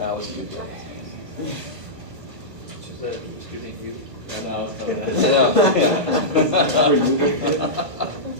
was a good day. She said, excuse me, you.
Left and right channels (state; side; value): late; left; 1.4 ms